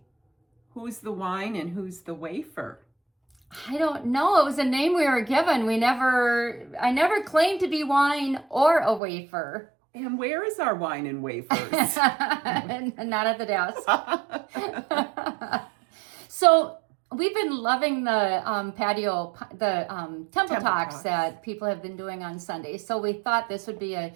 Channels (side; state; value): left; drops out; at 9.0 s